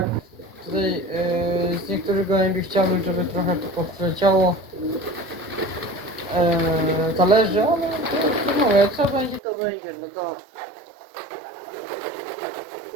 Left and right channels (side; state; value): left; drops out; at 9.4 s